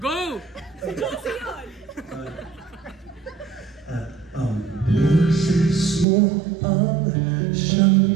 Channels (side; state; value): left; drops out; at 6.1 s